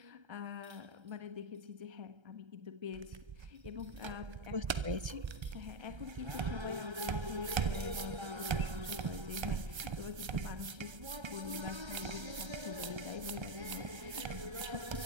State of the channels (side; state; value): left; late; 1.3 ms